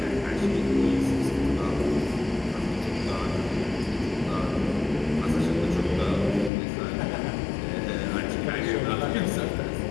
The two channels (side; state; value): right; drops out; at 6.5 s